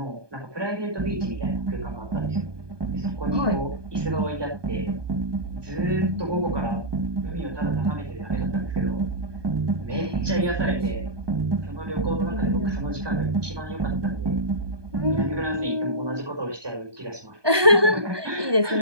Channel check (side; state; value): left; late; 1.2 ms